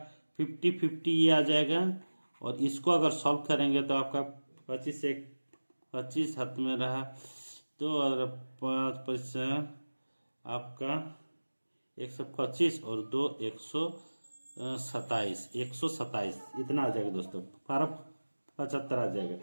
50 ये आ जाएगा, और इसको अगर सॉल्व करेंगे तो आपका 25 हाथ में रहा तो और 5 आपका 125 और 2 127 इतना आ जाएगा दोस्तों, 75 आ जाएगा।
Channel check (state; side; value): inverted; both; correlation -1.00